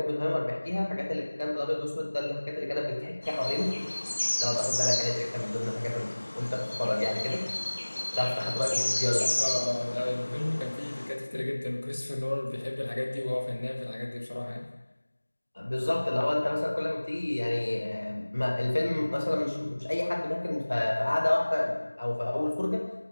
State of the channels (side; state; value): both; inverted; correlation -1.00